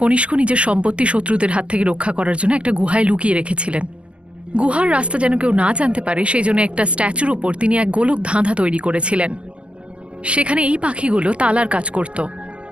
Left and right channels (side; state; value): left; late; 0.055 ms